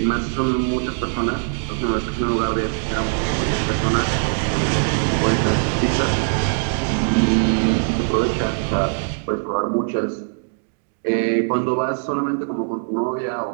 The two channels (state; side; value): silent; left; digital silence